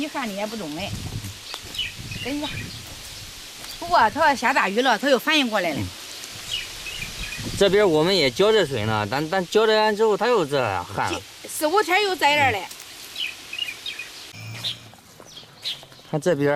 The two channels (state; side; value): identical; both; correlation 1.00